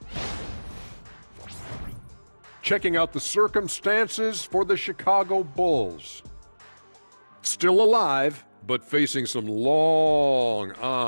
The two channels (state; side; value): inverted; both; correlation -1.00